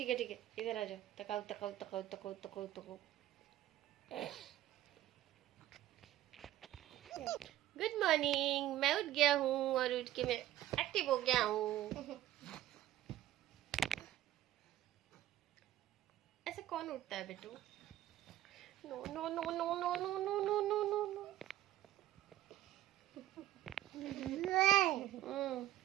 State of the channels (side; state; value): left; quieter; 13.9 dB